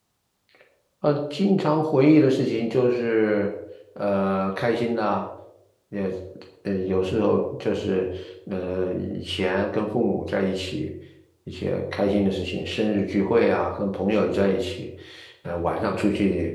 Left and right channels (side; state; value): both; identical; correlation 1.00